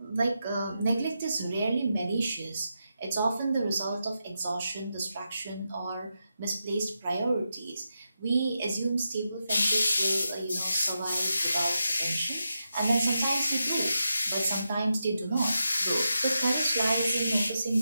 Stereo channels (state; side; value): inverted; both; correlation -0.87